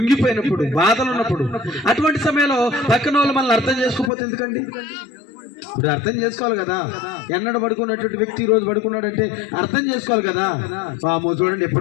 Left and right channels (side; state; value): right; drops out; at 4.1 s